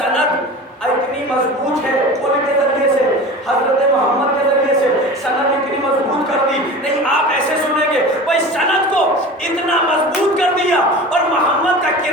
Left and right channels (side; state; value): both; normal; correlation 0.34